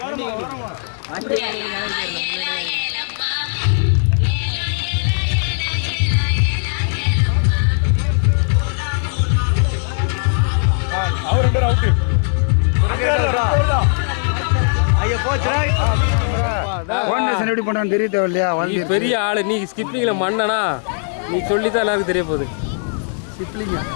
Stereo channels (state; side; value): silent; right; digital silence